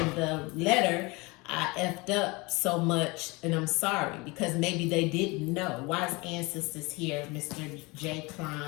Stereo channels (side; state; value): right; quieter; 25.1 dB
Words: the letter, I effed up so much and I'm sorry, because maybe they didn't know. Why is Ancestors here, Mr. J.